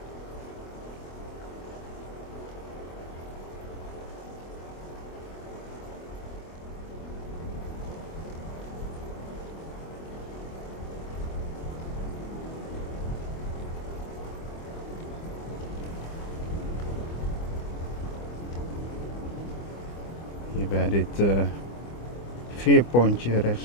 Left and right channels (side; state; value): right; late; 25 ms